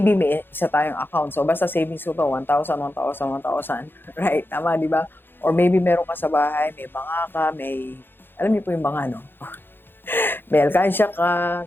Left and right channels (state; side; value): late; right; 0.10 ms